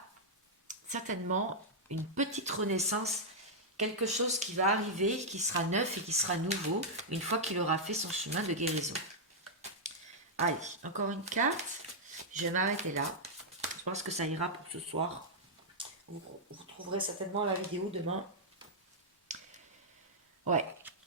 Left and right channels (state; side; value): normal; both; correlation -0.06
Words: certainement une petite renaissance, quelque chose qui va arriver, qui sera neuf et qui sera nouveau, une fois qu'il aura fait son chemin de guérison. Allez, encore une carte. Je vais m'arrêter là. Je pense que ça ira pour ce soir. Vous retrouverez certainement la vidéo demain. Ouais.